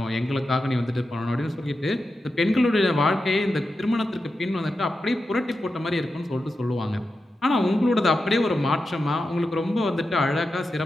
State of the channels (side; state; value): both; normal; correlation 0.90